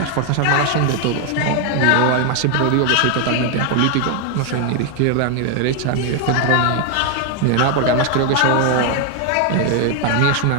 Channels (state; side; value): different; both; correlation 0.01